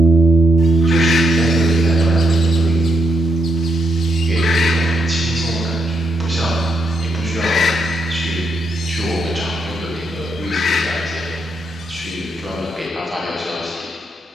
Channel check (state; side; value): normal; both; correlation 0.78